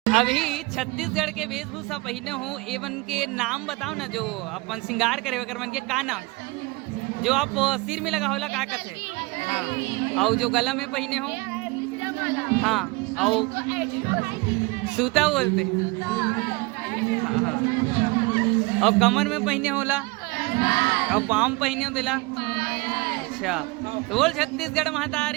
अभी छत्तीसगढ़ के वेशभूषा पहने हो, एवन के नाम बताओ ना, जो अपन श्रृंगार करे वगैरह मन के का नाम, जो आप सिर में लगा होला का कहते, हाँ, और जो गला में पहने हो, हाँ, और सूता बोलते, हाँ हाँ, और कमर में पहने होला, और पाम पहने हो दिला। अच्छा, तो बोल छत्तीसगढ़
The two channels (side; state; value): left; quieter; 24.8 dB